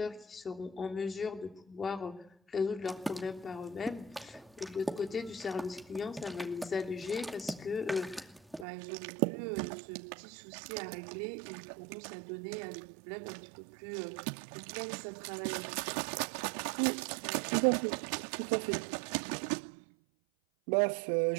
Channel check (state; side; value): drops out; left; at 8.7 s